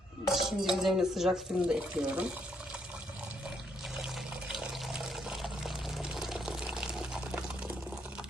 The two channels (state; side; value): normal; both; correlation 0.73